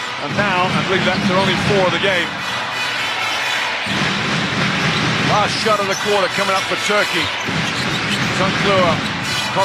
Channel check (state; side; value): identical; both; correlation 1.00